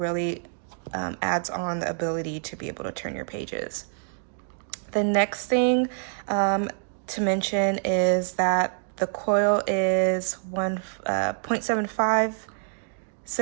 adds on the ability to be able to turn your pages. The next thing to mention is that the coil is 1.75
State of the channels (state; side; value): silent; left; digital silence